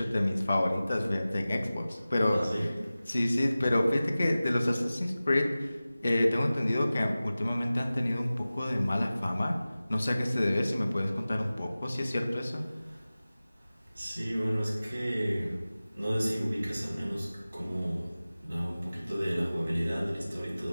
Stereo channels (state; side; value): inverted; both; correlation -0.97